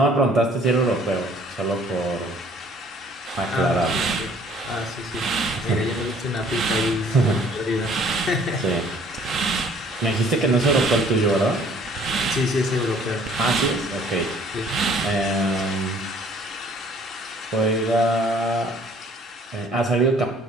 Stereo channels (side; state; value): both; normal; correlation 0.56